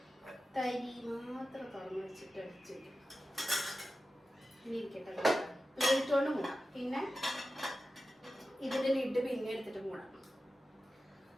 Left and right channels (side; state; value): both; normal; correlation 0.93